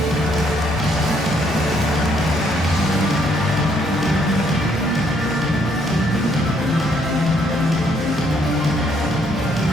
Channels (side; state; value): both; normal; correlation 0.69